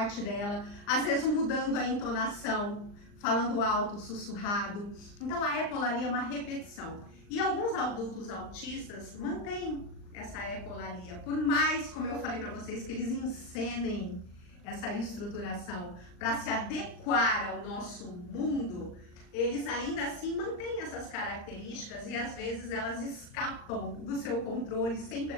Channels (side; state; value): right; late; 39 ms